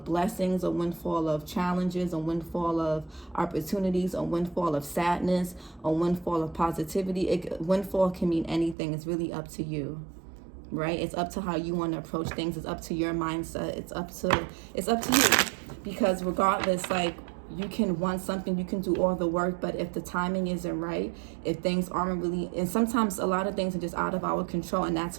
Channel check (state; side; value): drops out; left; at 8.8 s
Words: blessings, a windfall of challenges, a windfall of opportunities, a windfall of sadness, a windfall of positivity. Windfall can mean anything. It's really up to you, right? It's up to how you want to approach things. It's up to your mindset. It's up to you. Because regardless, like, you can want something, you can do all the work, but if the timing isn't right, if things aren't really, and sometimes a lot of things are just out of our control, and